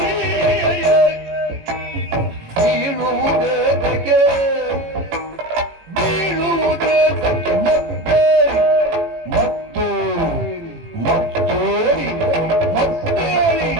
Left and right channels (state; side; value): late; left; 18 ms